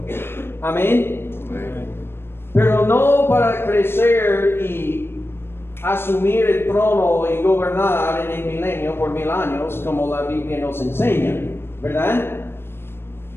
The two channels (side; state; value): right; late; 0.11 ms